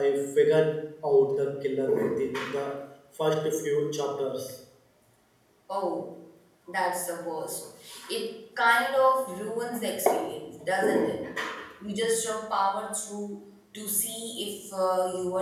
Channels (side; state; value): both; identical; correlation 1.00